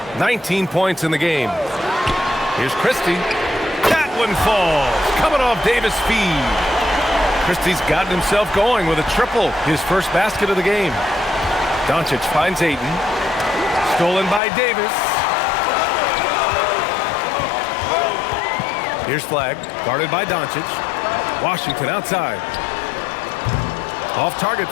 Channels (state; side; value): drops out; right; at 14.4 s